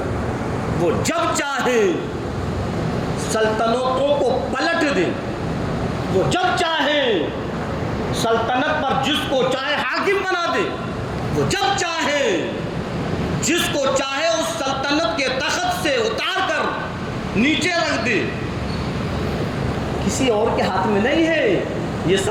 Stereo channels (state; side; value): identical; both; correlation 1.00